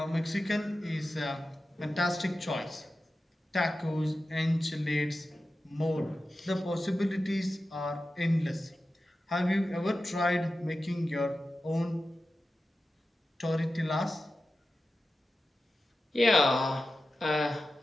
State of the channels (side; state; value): both; normal; correlation 0.93